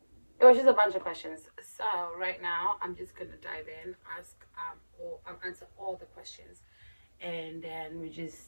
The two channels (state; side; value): inverted; both; correlation -1.00